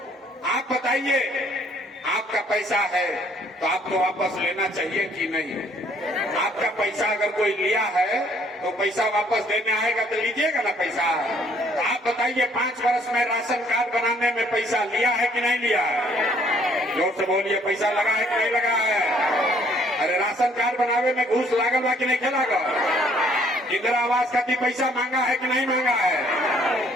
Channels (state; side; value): normal; both; correlation 0.63